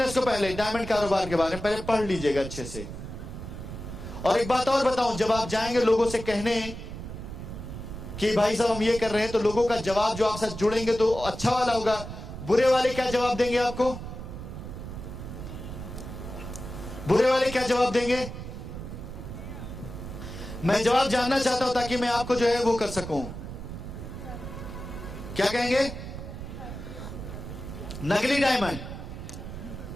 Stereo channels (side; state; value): right; noise; rumble, 9 dB below the sound